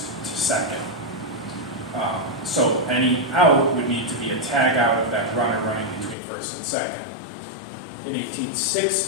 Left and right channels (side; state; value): right; drops out; at 6.2 s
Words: to second. So any out would need to be a tag out of that runner running between first and second. In